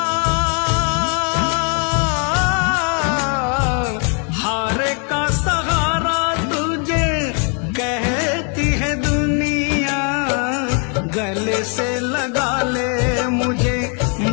हारे का सहारा तुझे कहती है दुनिया, गले से लगा ले मुझे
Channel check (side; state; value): right; quieter; 40.0 dB